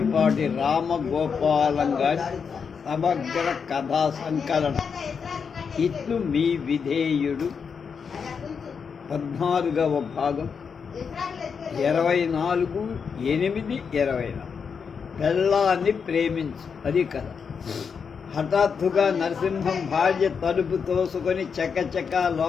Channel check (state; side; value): quieter; right; 6.2 dB